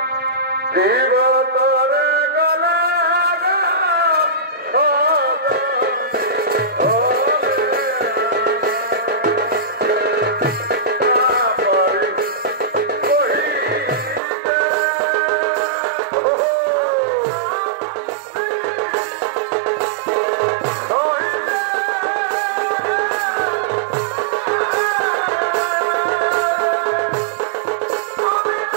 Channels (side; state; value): left; drops out; at 14.2 s